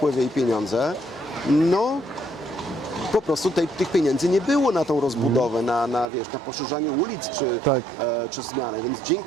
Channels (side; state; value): left; drops out; at 6.1 s